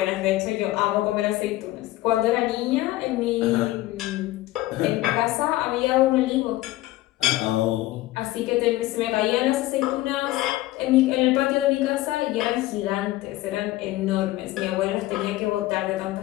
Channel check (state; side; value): quieter; right; 17.2 dB